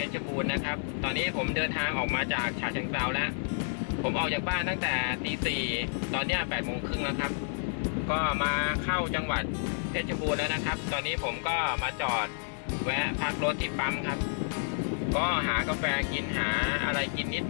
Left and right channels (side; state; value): right; silent; 58 dB below the other